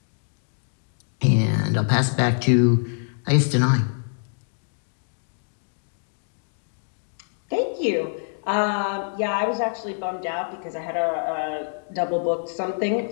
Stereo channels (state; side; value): silent; right; digital silence